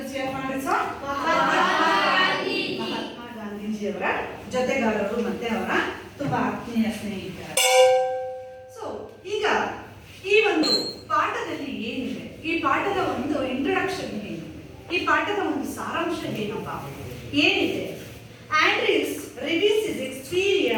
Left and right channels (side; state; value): both; identical; correlation 1.00